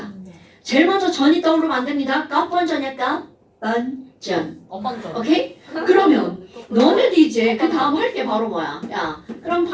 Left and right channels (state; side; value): identical; both; correlation 1.00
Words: 제일 먼저 전이 떠오르면 안 됩니다. 껍번전이야 껍번전. 엄반전. 오케이? 그러면 너네도 이제 그 다음 할 게 바로 뭐야? 야, 그럼